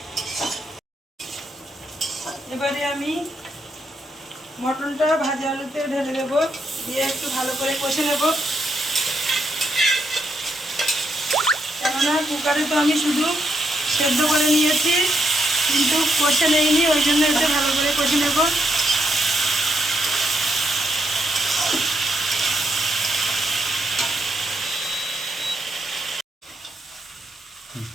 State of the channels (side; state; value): both; normal; correlation 0.78